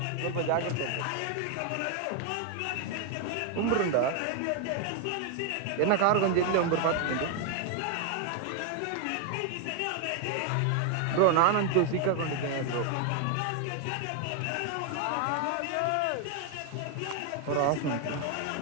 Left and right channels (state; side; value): different; both; correlation 0.00